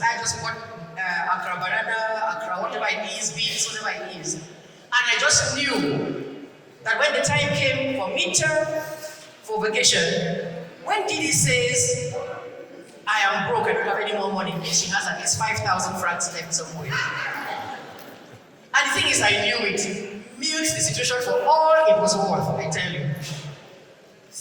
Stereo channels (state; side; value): identical; both; correlation 1.00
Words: I just bought Accra banana, Accra whatever it is, beans, whatever it is. And I just knew that when the time came for midterm, for vacation, when Didi says, I am broke, I don't have any more money, she has at least 5,000 francs left somewhere. And the thing is, I knew it. Milked the situation for all it was worth, I tell you.